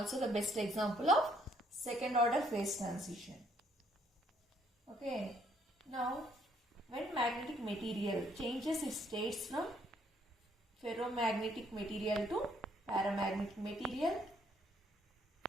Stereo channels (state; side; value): normal; both; correlation 0.67